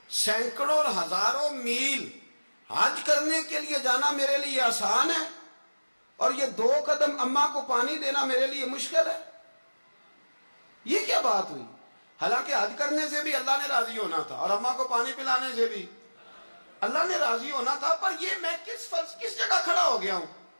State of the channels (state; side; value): inverted; both; correlation -1.00